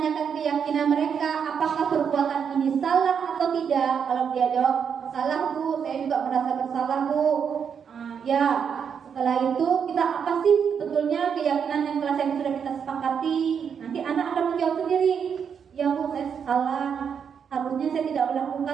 keyakinan mereka, apakah perbuatan ini salah atau tidak? Kalau dia jawab salah Bu, saya juga merasa bersalah Bu. Ya. Setelah itu kita apa sih sebetulnya keyakinan yang telah sudah kita sepakati? Nanti anak akan menjawab sendiri. Ya Bu, saya salah. Harusnya saya tidak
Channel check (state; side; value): quieter; left; 7.2 dB